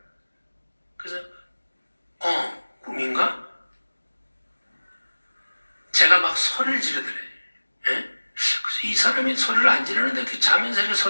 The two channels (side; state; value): both; inverted; correlation -1.00